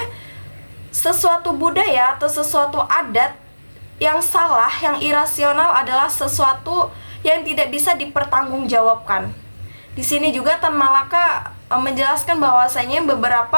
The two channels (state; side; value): inverted; both; correlation -1.00